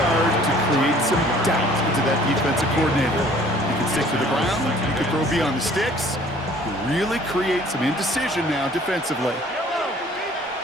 to create some doubt into that defensive coordinator. You can stick to the ground, you can throw beyond the sticks, you really create some indecision now defensively.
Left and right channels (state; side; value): normal; both; correlation 0.54